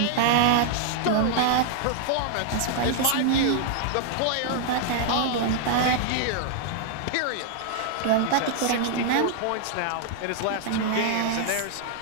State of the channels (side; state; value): both; different; correlation 0.00